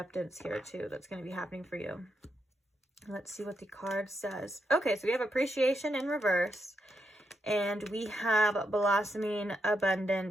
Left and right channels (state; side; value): normal; both; correlation 0.82